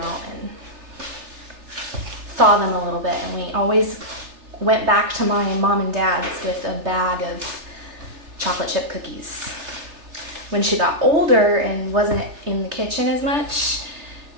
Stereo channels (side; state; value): left; late; 3.3 ms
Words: and thaw them a little bit, and we always went back to my mom and dad's with a bag of chocolate chip cookies. When she got older and wasn't in the kitchen as much,